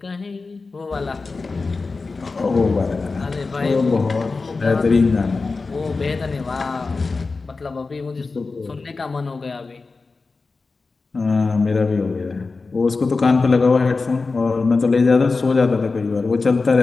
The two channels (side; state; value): right; quieter; 4.0 dB